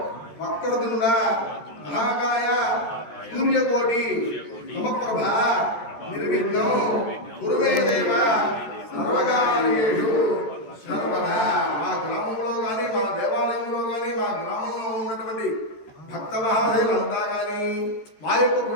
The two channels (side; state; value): right; late; 13 ms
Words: వక్రతుండ మహాకాయ సూర్యకోటి సమప్రభ నిర్విఘ్నం కురుమే దేవ సర్వకార్యేషు సర్వదా. మా గ్రామంలో కానీ మా దేవాలయంలో కానీ మా గ్రామంలో ఉన్నటువంటి భక్త మహాశయులంతా కానీ మా యొక్క